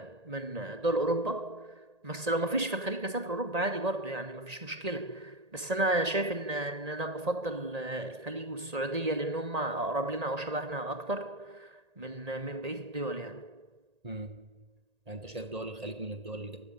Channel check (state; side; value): late; left; 1.8 ms